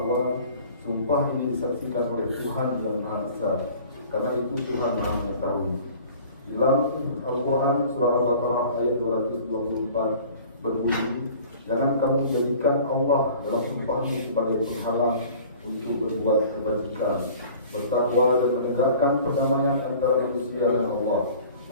sumpah ini disaksikan oleh Tuhan yang Maha Esa, karena itu Tuhan Maha Mengetahui. Dalam Al-Quran surah Al-Baqarah ayat 224 berbunyi, jangan kamu jadikan Allah dalam sumpahmu sebagai penghalang untuk berbuat kebajikan, bertakwa dan menegakkan perdamaian antara manusia dan Allah.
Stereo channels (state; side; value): inverted; both; correlation -0.46